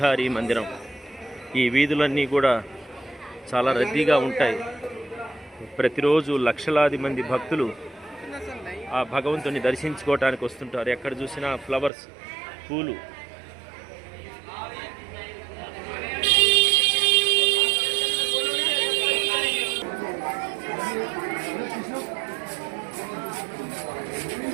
మందిరం. ఈ వీధులన్నీ కూడా చాలా రద్దీగా ఉంటాయి. ప్రతిరోజు లక్షలాది మంది భక్తులు ఆ భగవంతుని దర్శించుకోవటానికి వస్తుంటారు. ఎక్కడ చూసినా ఫ్లవర్స్, పూలు.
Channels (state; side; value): drops out; left; at 11.9 s